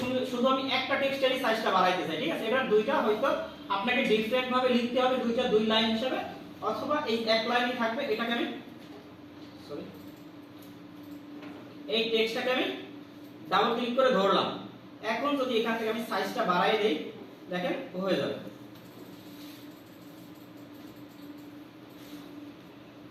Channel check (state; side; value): identical; both; correlation 1.00